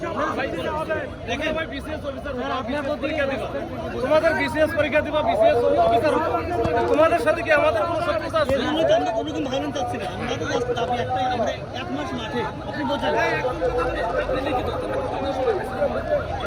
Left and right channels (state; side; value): identical; both; correlation 1.00